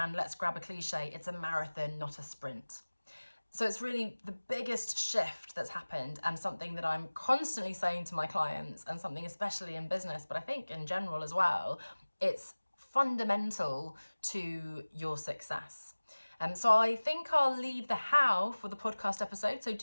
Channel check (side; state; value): both; inverted; correlation -1.00